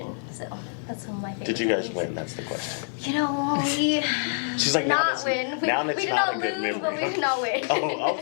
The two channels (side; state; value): right; silent; 61 dB below the other